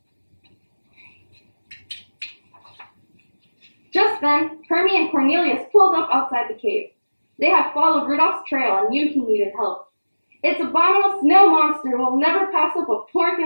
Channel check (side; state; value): both; inverted; correlation -1.00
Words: Just then, Hermie and Cornelius pulled up outside the cave. They had followed Rudolph's trail and knew he needed help. "It's abominable snow monster will never pass up a pork